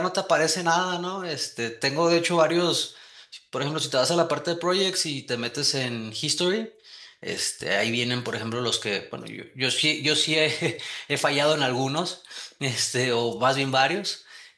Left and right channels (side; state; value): both; identical; correlation 1.00